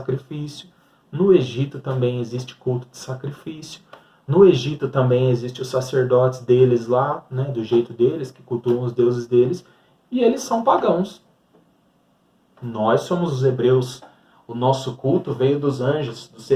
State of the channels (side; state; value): both; identical; correlation 1.00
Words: No Egito também existe culto de sacrifício. No Egito também existe os sacerdotes deles lá, né, do jeito deles, que cultuam os deuses deles, e eles são pagãos. Nós somos os hebreus. O nosso culto veio dos anjos, dos